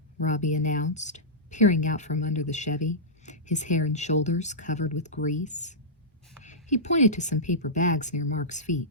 Robbie announced, peering out from under the Chevy, his hair and shoulders covered with grease. He pointed to some paper bags near Mark's feet.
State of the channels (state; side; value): normal; both; correlation -0.13